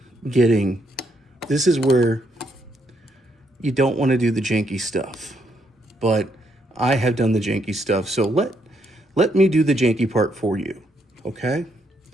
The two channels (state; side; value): normal; both; correlation 0.75